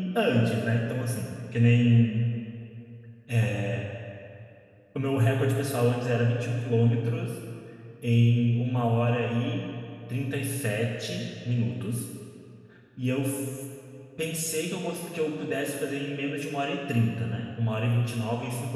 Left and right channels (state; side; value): identical; both; correlation 1.00